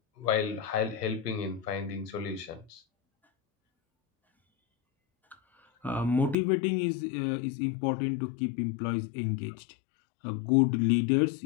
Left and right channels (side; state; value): right; drops out; at 6.4 s